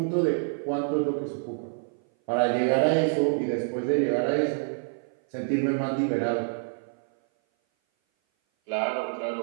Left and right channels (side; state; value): left; silent; 57 dB below the other